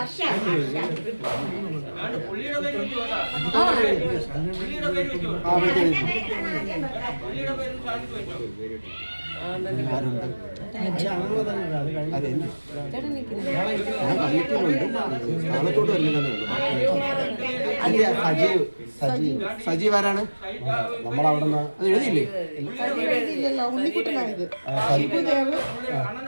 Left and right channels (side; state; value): both; inverted; correlation -1.00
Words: സജീവ് ആരാണ്? നമ്മളവിടെ അത് എഴുതിയില്ലേ? ഉണ്ണിക്കുട്ടനായത്